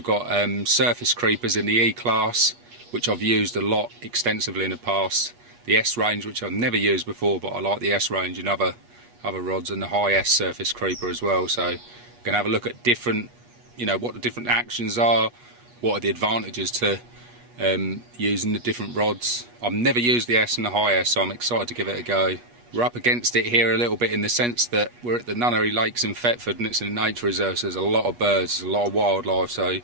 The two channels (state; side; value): late; left; 8.3 ms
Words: got surface creepers in the E class, which I've used a lot extensively in the past. The S range, which I've never used before, but I like the S range in other rods, and the high S surface creeper as well. So we're going to have a look at different, what the different actions are, what are the advantages to using the different rods. I've never used the S and the high S, so I'm excited to give it a go. We're up against it here a little bit in the sense that we're at the Nunnery Lakes in Thetford and it's in a nature reserve, so there's a lot of birds, there's a lot of wildlife, so we're going